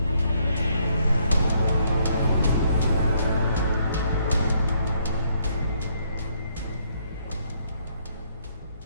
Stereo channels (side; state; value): both; inverted; correlation -0.70